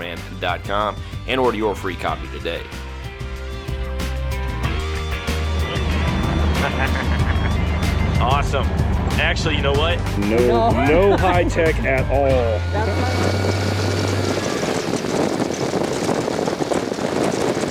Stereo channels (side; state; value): both; identical; correlation 1.00